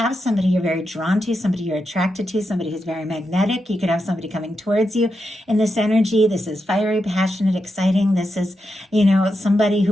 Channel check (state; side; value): normal; both; correlation 0.86